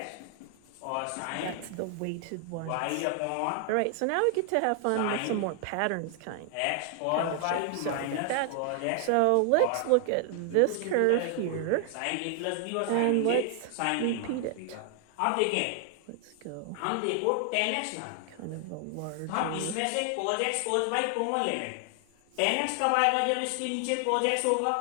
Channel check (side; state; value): both; different; correlation 0.00